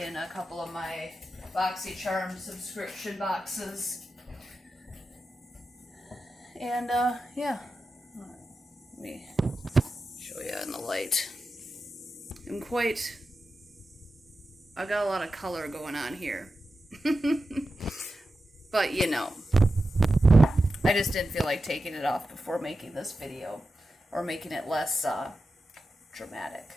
a couple of my BoxyCharm subscription boxes. And, yeah. Let me show you in the light. I got a lot of color going on here. But, you know, I just didn't feel like taking it off before making this video, or making it less, dramatic.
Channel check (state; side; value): normal; both; correlation 0.91